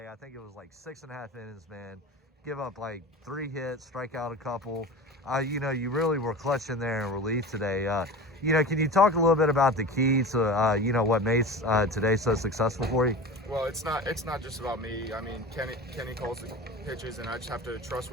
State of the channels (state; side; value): normal; both; correlation 0.32